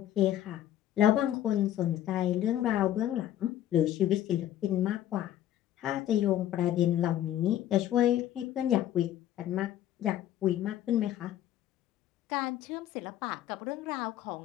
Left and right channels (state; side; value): quieter; right; 12.2 dB